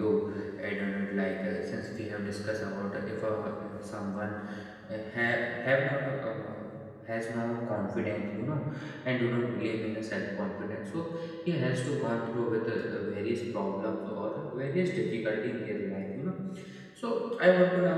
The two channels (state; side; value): identical; both; correlation 1.00